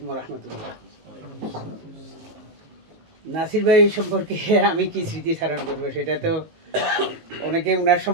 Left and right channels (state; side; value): late; left; 19 ms